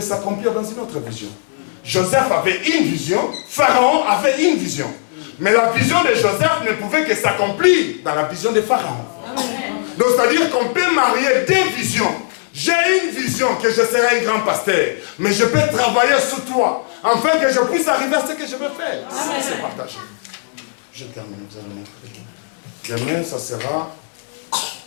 s'accomplir dans une autre vision. Joseph avait une vision, Pharaon avait une vision. Mais la vision de Joseph ne pouvait que s'accomplir dans la vision de Pharaon. Donc, c'est-à-dire qu'on peut marier deux visions. J'ai une vision que je serai un grand pasteur, mais je peux travailler sous toi, afin que je puisse arriver à ce que je veux faire. Ça, c'est partagé. Je termine, vous allez mettre. Demain, ça sera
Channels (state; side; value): silent; right; 60 dB below the other